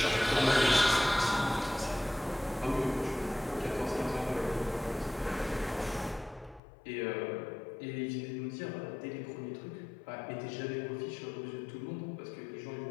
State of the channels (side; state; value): right; drops out; at 6.6 s